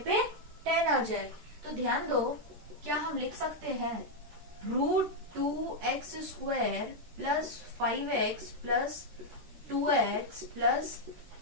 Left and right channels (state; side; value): late; left; 13 ms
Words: 10 आ जाए। तो ध्यान दो क्या हम लिख सकते हैं, √2x square plus 5x plus 2x plus